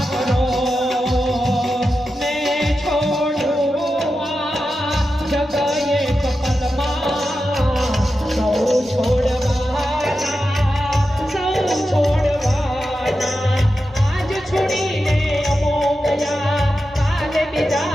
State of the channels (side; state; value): both; normal; correlation 0.90